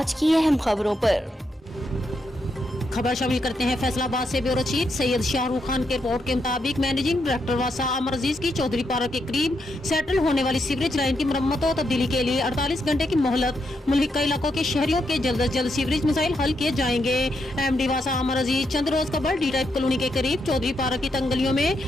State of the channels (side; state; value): both; normal; correlation 0.81